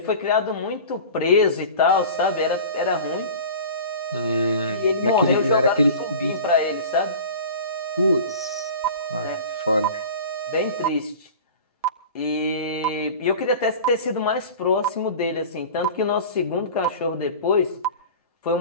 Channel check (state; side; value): inverted; both; correlation -0.37